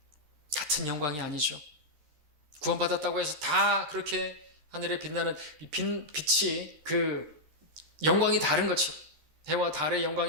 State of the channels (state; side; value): late; left; 13 ms